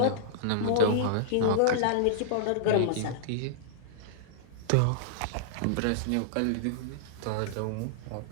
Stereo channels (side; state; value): both; different; correlation -0.01